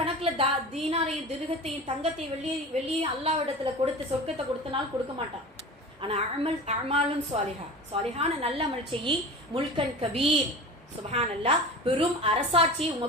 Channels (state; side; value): normal; both; correlation 0.34